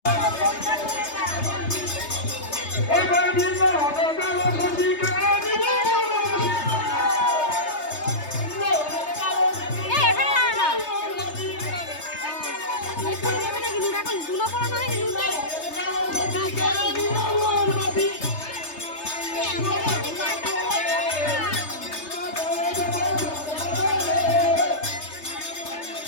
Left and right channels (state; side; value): late; right; 3.3 ms